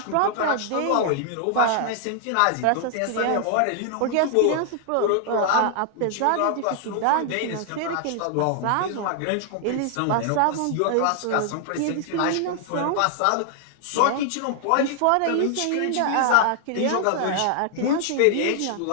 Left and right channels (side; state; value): both; different; correlation 0.00